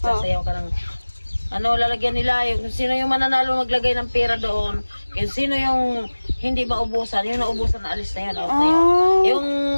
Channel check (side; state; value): both; inverted; correlation -1.00